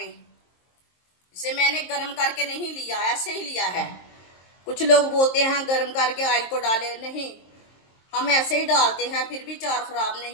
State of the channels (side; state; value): right; late; 23 ms